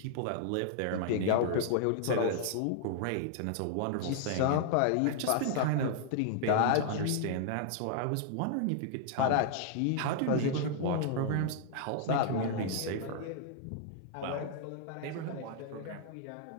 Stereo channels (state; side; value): different; both; correlation -0.01